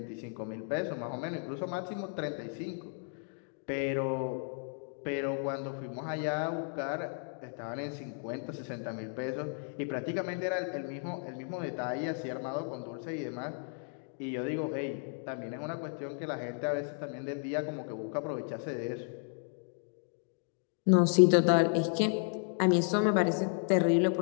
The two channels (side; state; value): right; silent; 55 dB below the other